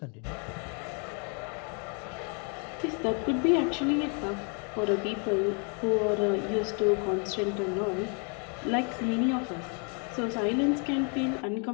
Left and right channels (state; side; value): quieter; right; 38.0 dB